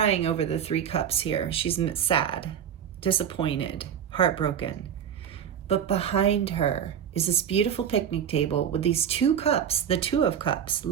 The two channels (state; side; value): quieter; left; 8.7 dB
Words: over the Three Cups here. She's sad, disappointed, heartbroken. But behind her is this beautiful picnic table with these two cups, the Two of Cups,